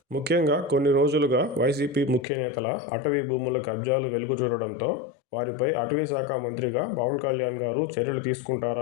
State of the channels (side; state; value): right; drops out; at 2.2 s